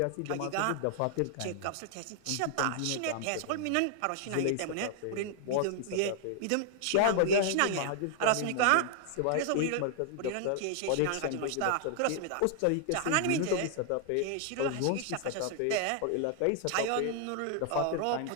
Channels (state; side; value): different; both; correlation -0.01